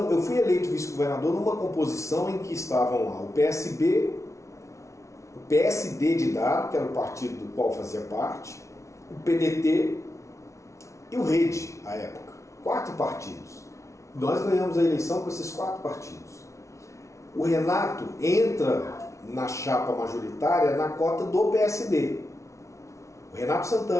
eu fui eleito vice-governador numa composição em que estavam lá o PSB, o PSD de Dado, que era o partido do qual fazia parte, o PDT e o Rede, à época. 4 partidos. Nós ganhamos a eleição com esses 4 partidos. O Renato entra na chapa majoritária na cota do PSD. O Renato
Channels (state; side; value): late; right; 0.14 ms